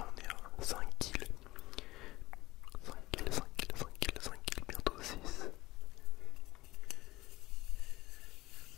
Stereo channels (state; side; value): quieter; right; 18.5 dB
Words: on est à 5 kills. 5 kills, 5 kills, 5 kills, 5 kills, bientôt 6.